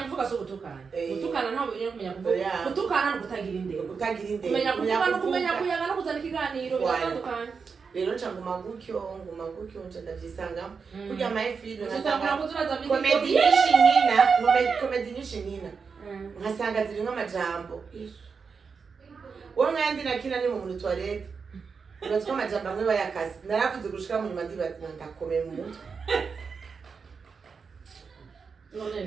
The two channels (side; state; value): left; quieter; 5.4 dB